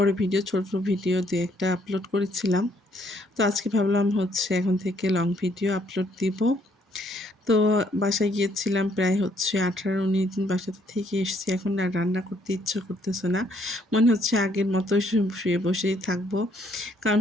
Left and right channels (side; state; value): both; normal; correlation 0.68